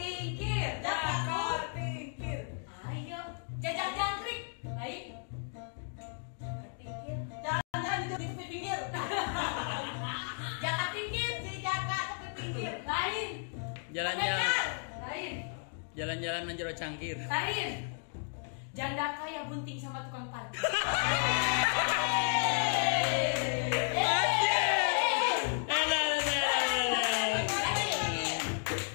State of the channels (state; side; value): silent; right; 56 dB below the other